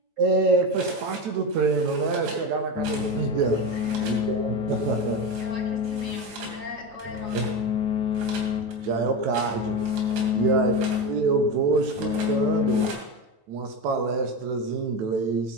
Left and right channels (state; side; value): late; left; 9.1 ms